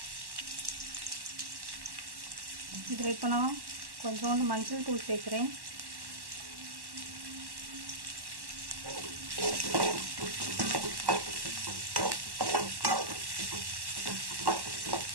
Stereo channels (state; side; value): late; left; 1.1 ms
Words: இதில் இப்போ நான் கொஞ்சோண்டு மஞ்சள் தூள் சேர்க்குறேன்.